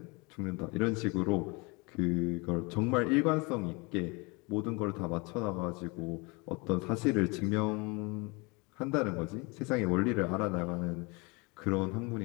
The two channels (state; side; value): quieter; right; 28.2 dB